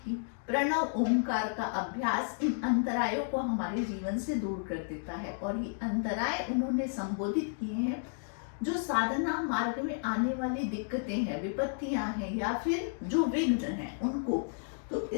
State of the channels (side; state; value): right; silent; digital silence